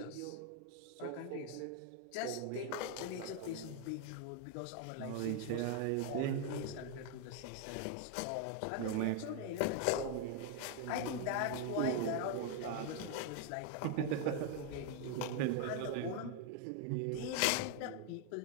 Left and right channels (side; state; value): both; different; correlation 0.00